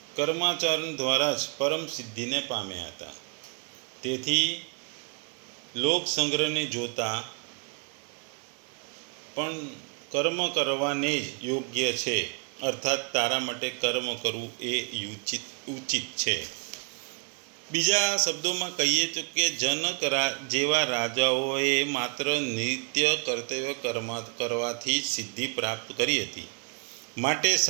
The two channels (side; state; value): left; quieter; 38.7 dB